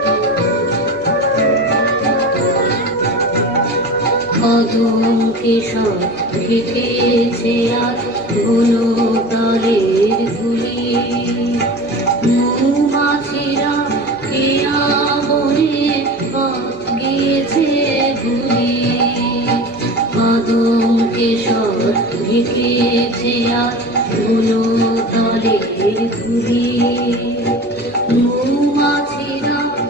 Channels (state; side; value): normal; both; correlation 0.34